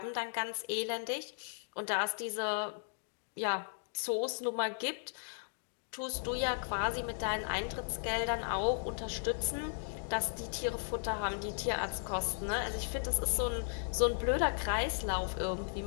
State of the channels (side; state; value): right; silent; digital silence